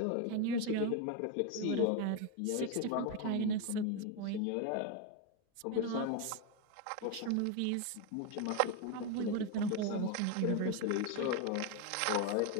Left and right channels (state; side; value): different; both; correlation 0.02